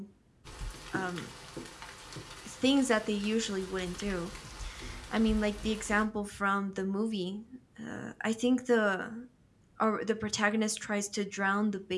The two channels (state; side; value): identical; both; correlation 1.00